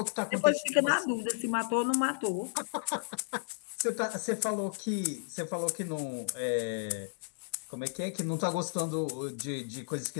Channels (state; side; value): silent; right; digital silence